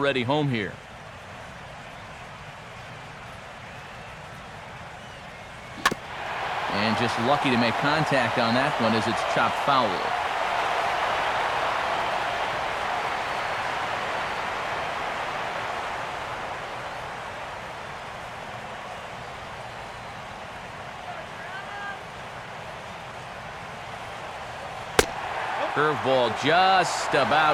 home here. And just lucky to make contact on that one as it's chopped foul. Curveball just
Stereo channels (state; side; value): identical; both; correlation 1.00